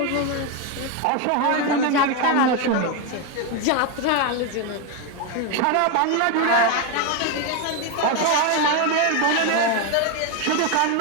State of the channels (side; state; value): both; different; correlation 0.02